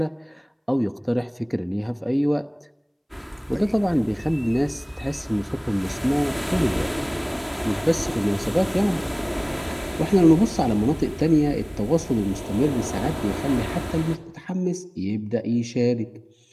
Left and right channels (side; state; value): both; identical; correlation 1.00